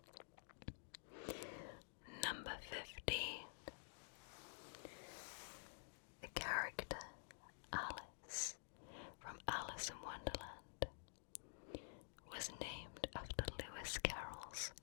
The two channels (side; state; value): right; silent; digital silence